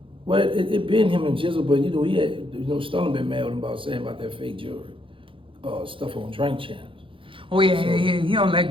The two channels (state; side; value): late; left; 0.25 ms